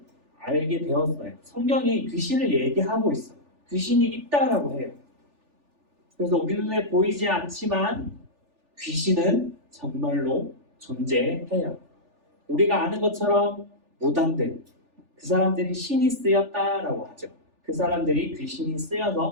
알게 되었어요. 성경이 귀신을 얘기하고 있어요. 귀신이 있다라고 해요. 그래서 우리 눈에 보이지 않지만 귀신은 정말로 존재해요. 우리가 아는 것처럼 무당들, 그 사람들이 신이 쓰였다라고 하죠. 그 사람들이 귀신이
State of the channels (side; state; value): left; late; 3.4 ms